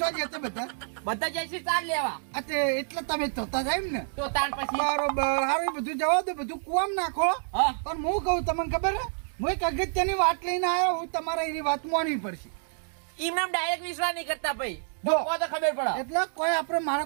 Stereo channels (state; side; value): silent; left; digital silence